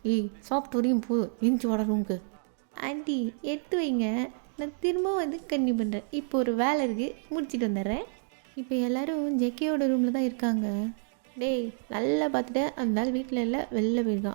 சாப்பிட்டு வரையும் போ, இன்ச்சு வாட ரூமுக்கு. ஆண்டி எடுத்து வைங்க, நான் திரும்ப கன்னியூ பண்ணுறேன், இப்போ ஒரு வேலை இருக்குது, முடிச்சுட்டு வந்துடுறேன். இப்போ எல்லோரும் ஜெகேயோட ரூமில் தான் இருக்காங்க. டேய் நல்லா பார்த்துட்டு, அந்த நாள் வீட்டில் இல்லை, வெளில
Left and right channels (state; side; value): silent; left; digital silence